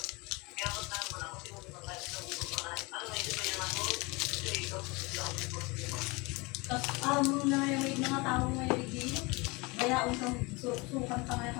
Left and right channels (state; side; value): quieter; right; 26.1 dB